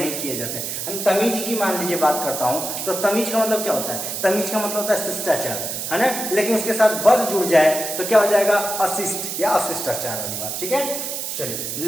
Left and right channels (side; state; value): right; noise; hiss, 4 dB below the sound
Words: किए जाते। तमीज की मान लीजिए बात करता हूं तो तमीज का मतलब क्या होता है, तमीज का मतलब होता है शिष्टाचार, है ना, लेकिन उसके साथ बद जुड़ जाए तो क्या हो जाएगा, अशिष्ट या अशिष्टाचार वाली बात, ठीक है। चलिए